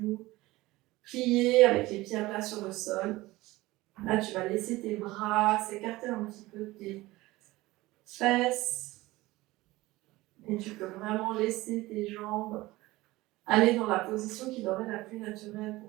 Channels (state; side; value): quieter; left; 19.2 dB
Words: pliés avec les pieds à plat sur le sol. Là, tu vas laisser tes bras s'écarter un petit peu de tes fesses. Et tu peux vraiment laisser tes jambes aller dans la position qui leur est la plus naturelle